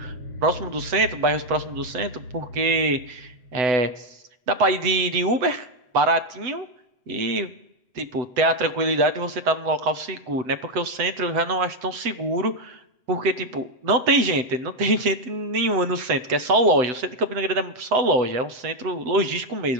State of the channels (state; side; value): late; left; 8.0 ms